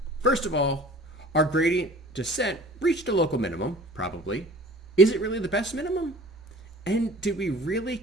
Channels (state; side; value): normal; both; correlation 0.46